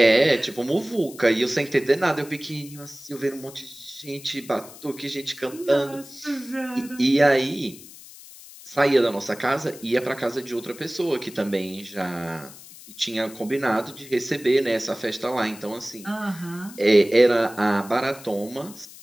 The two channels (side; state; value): left; noise; hiss, 18 dB below the sound